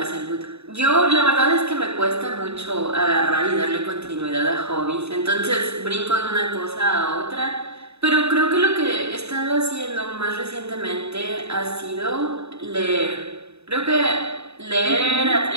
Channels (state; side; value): late; left; 0.80 ms